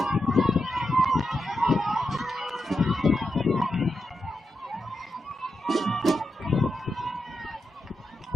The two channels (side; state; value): both; normal; correlation 0.87